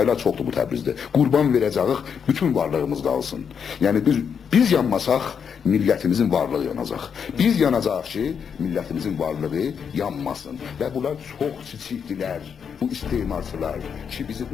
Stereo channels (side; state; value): right; quieter; 7.0 dB